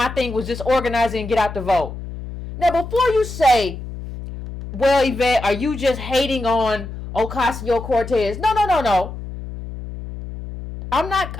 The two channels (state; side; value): noise; left; hum, 10 dB below the sound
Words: thing was just organizing and get out the vote. Now before you say, well, Yvette, are you just hating on Ocasio Cortez? No. I'm